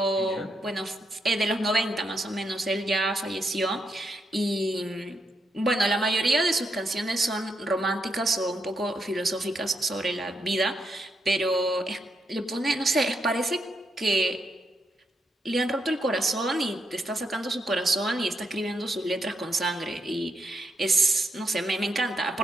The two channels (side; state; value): both; normal; correlation 0.81